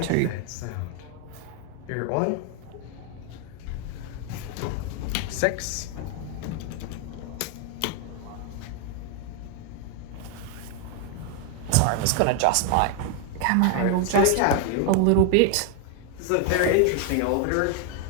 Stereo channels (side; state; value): both; different; correlation 0.00